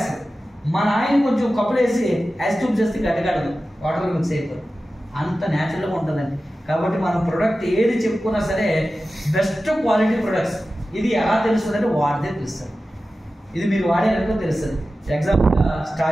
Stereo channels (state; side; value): normal; both; correlation 0.94